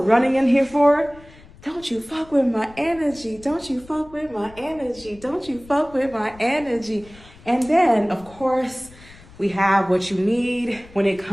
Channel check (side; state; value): left; noise; rumble, 22 dB below the sound